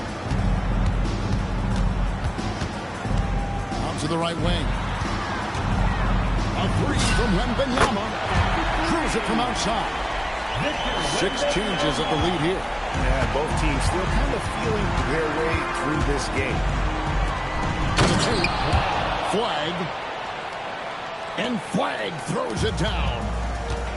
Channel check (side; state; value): both; identical; correlation 1.00